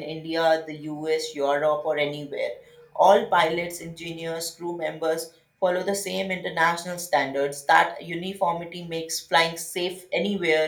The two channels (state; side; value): identical; both; correlation 1.00